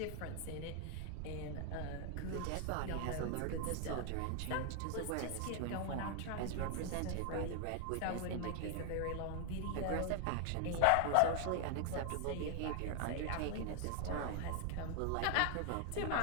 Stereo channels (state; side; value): different; both; correlation 0.00